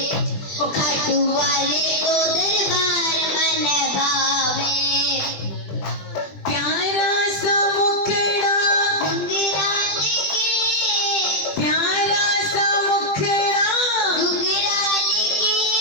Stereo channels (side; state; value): right; late; 20 ms